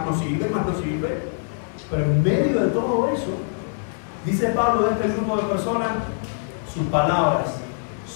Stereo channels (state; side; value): silent; right; digital silence